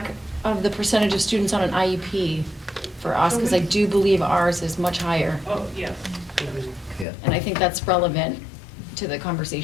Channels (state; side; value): drops out; right; at 7.1 s